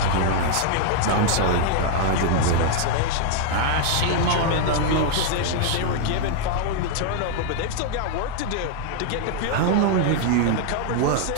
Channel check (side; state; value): both; different; correlation 0.00